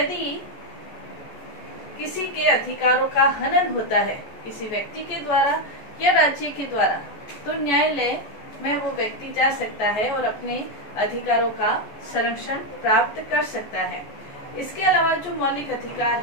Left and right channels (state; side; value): late; right; 14 ms